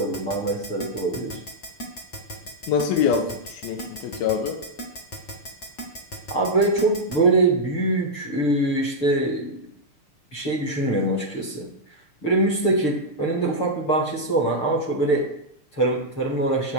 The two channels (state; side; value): late; right; 6.7 ms